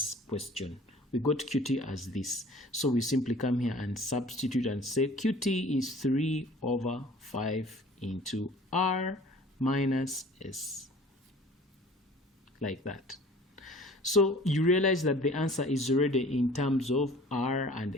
question. We got QT as this. So we simply come here and substitute and say QT is 3/5 into R minus S. Like that. So you realize that the answer is already in terms of R and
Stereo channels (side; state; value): both; normal; correlation 0.48